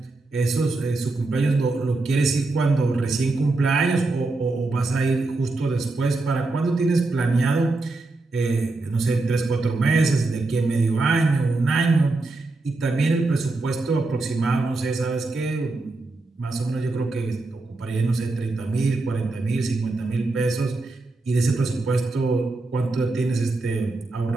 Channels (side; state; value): left; quieter; 3.3 dB